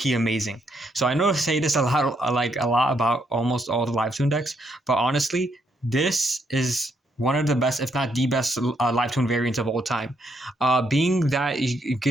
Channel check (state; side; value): normal; both; correlation 0.75